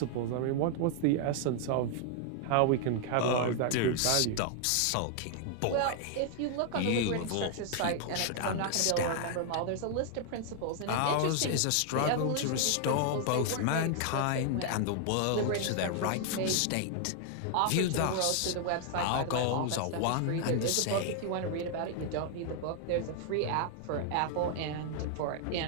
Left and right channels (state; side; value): different; both; correlation 0.00